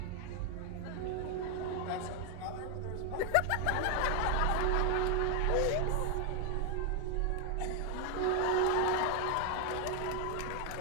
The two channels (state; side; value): different; both; correlation 0.01